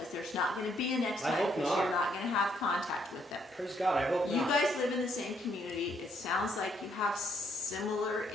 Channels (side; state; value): both; normal; correlation 0.71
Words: there's not gonna be a next I time, hope because not. you're not gonna have contact with them. Praise God, I hope You not. guys live in the same community, it sounds like you have similar